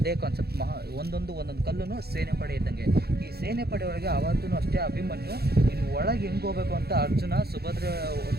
ಕಾನ್ಸೆಪ್ಟ್. ಒಂದೊಂದು ಕಲ್ಲೂ ಸೇನೆ ಪಡೆ ಇದ್ದಂಗೆ. ಈ ಸೇನೆ ಪಡೆ ಒಳಗೆ ಅವತ್ತೂ ಅಷ್ಟೇ ಅಭಿಮನ್ಯು ಇನ್ನು ಒಳಗೆ ಹೆಂಗೆ ಹೋಗ್ಬೇಕು ಅಂತ ಅರ್ಜುನ ಸುಭದ್ರ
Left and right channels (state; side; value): late; left; 0.46 ms